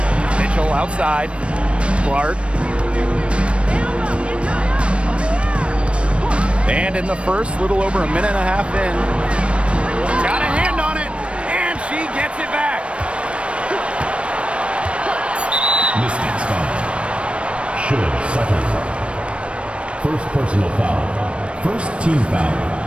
Mitchell outside. Clark. And in the first, little over a minute and a half in. Got a hand on it, and she gets it back. Mistakes foul. Should second. First personal foul. First team foul.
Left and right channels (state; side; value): late; left; 0.060 ms